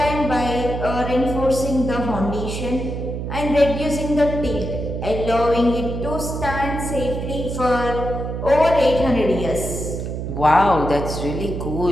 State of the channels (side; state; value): right; noise; hum, 5 dB below the sound